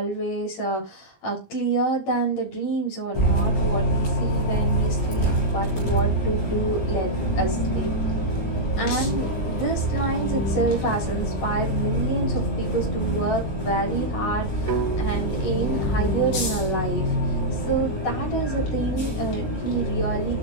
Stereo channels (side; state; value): right; late; 19 ms